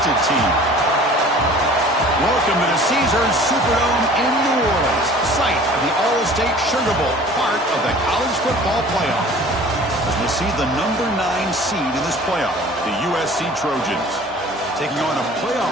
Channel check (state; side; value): normal; both; correlation 0.46